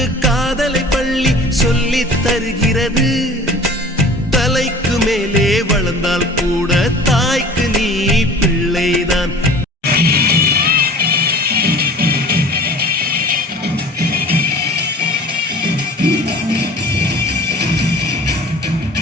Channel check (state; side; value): normal; both; correlation 0.44